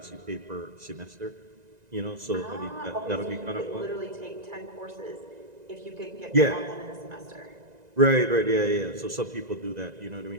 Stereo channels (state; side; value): late; left; 1.9 ms